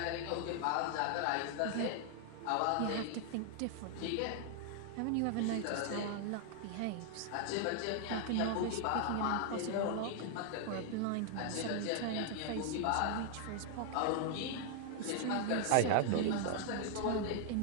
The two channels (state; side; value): different; both; correlation 0.00